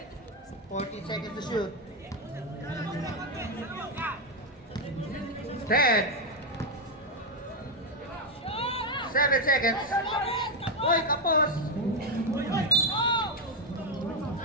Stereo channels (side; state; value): both; normal; correlation 0.04